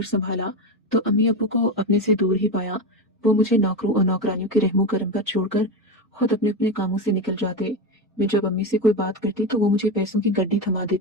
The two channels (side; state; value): both; normal; correlation 0.16